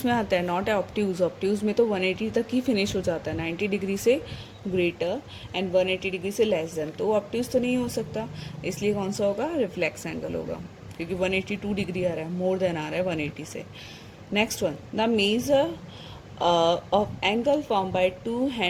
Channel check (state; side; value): identical; both; correlation 1.00